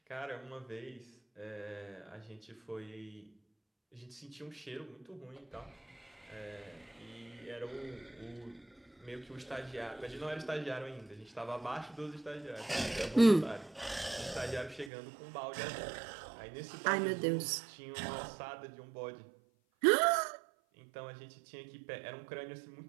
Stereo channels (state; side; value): drops out; left; at 14.9 s